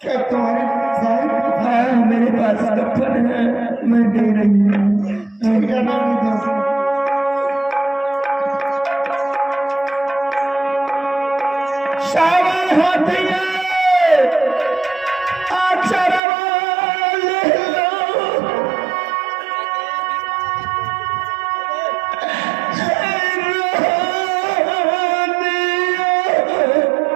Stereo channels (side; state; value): left; drops out; at 16.2 s